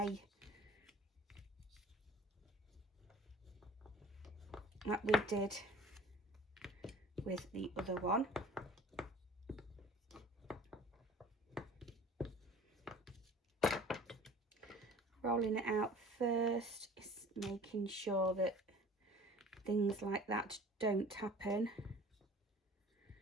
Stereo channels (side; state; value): both; normal; correlation 0.46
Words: that we did with the other one. Rolling it out first, is making sure that things like that don't happen,